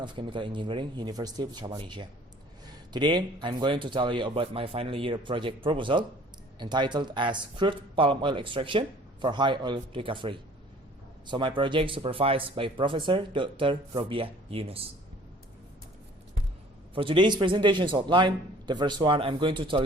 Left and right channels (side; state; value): both; normal; correlation 0.52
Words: Chemical Engineering, University of Malaysia. Today, I'm going to tell you about my final year project proposal entitled as Crude Palm Oil Extraction for High Oil Recovery. So my project supervised by Professor Dr. Robiah Yunus. For today's presentation's outline, the first one I'm going to tell